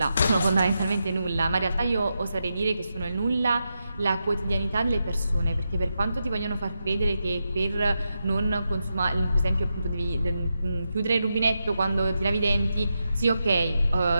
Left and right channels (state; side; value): inverted; both; correlation -0.87